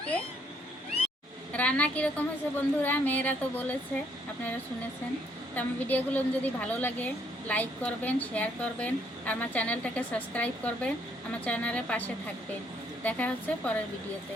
রান্না কীরকম হয়েছে বন্ধুরা? মেয়েরা তো বলেছে, আপনারা শুনেছেন। তো আমার ভিডিওগুলো যদি ভালো লাগে লাইক করবেন, শেয়ার করবেন, আর আমার চ্যানেলটাকে সাবস্ক্রাইব করবেন, আমার চ্যানেলের পাশে থাকবেন। দেখা হচ্ছে পরের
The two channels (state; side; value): normal; both; correlation 0.68